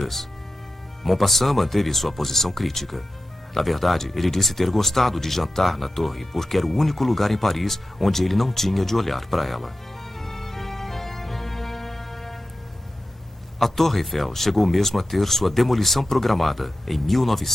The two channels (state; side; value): normal; both; correlation 0.93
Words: Maupassant manteve sua posição crítica. Na verdade, ele disse ter gostado de jantar na torre, porque era o único lugar em Paris onde ele não tinha de olhar para ela. A Torre Eiffel chegou mesmo a ter sua demolição programada em